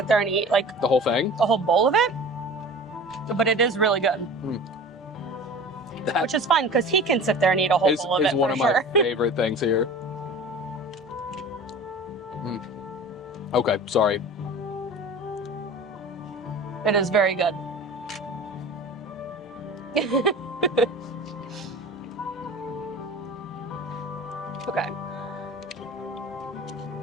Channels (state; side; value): normal; both; correlation 0.39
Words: there and eat like The whole thing? a whole bowl of it, but it is really good. That Which is fun because he can sit there and eat a whole bowl of is it one for of sure. my favorite things here. Okay, sorry. It is very good. Okay.